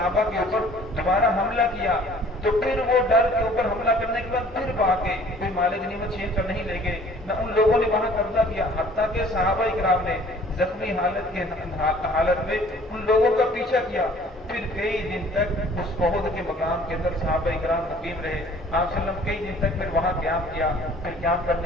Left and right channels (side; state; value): both; normal; correlation 0.53